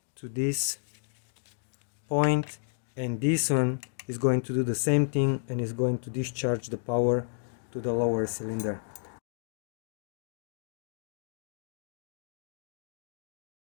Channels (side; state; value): right; silent; digital silence